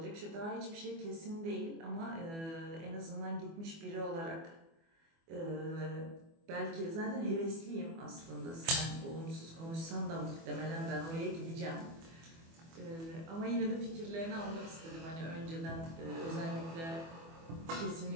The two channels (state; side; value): late; left; 24 ms